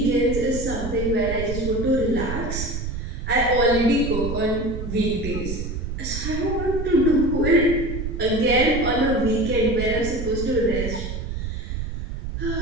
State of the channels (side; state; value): right; noise; rumble, 5 dB below the sound